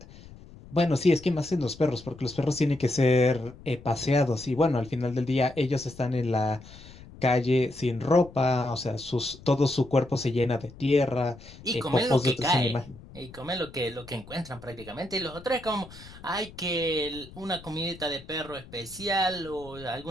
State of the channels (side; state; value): left; noise; rumble, 19 dB below the sound